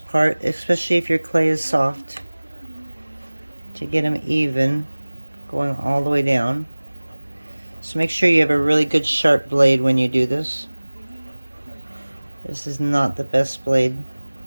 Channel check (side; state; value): both; inverted; correlation -1.00